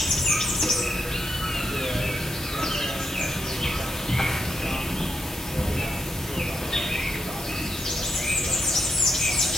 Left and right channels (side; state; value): both; normal; correlation 0.82